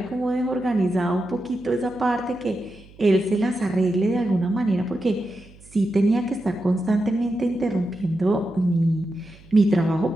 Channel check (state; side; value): noise; right; hum, 24 dB below the sound